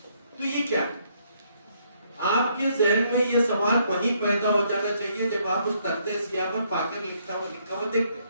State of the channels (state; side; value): inverted; both; correlation -0.70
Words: تو یہ کیا ہے؟ آپ کے ذہن میں یہ سوال وہیں پیدا ہو جانا چاہیے جب آپ اس تختے سیاہ پر پاکر لکھا ہوا دیکھتے ہیں،